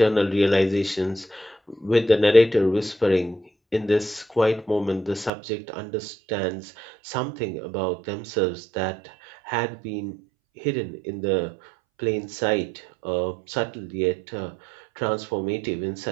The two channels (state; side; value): drops out; left; at 5.3 s